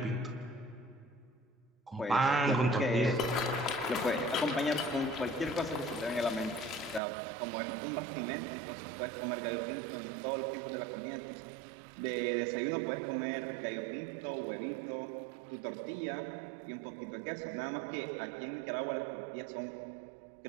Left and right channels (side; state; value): left; drops out; at 7.0 s